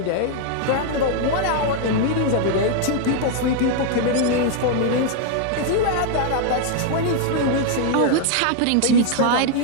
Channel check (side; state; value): both; different; correlation 0.00